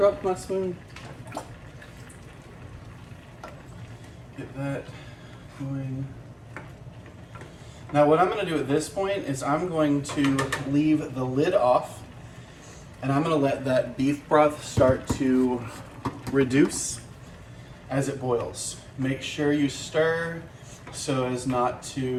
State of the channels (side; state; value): both; identical; correlation 1.00